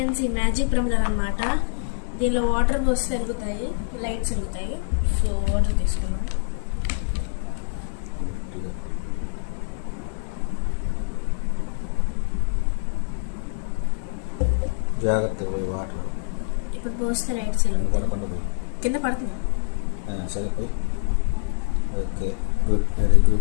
ఈ మ్యాజిక్ ప్రమిదలు అనమాట. దీనిలో వాటర్ పోస్తే వెలుగుతాయి, లైట్స్ వెలుగుతాయి. సో వాటర్ తీసుకున్నాం. జాగ్రత్తగా పోయి వాటర్ ఇప్పుడు పోస్తే లైట్స్ వెలుగుతాయి. కింద పడుతుంది. సరిపోయి. Okay, good, very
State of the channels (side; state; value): right; silent; 62 dB below the other